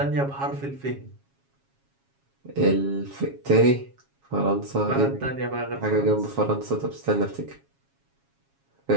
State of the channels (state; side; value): late; left; 7.3 ms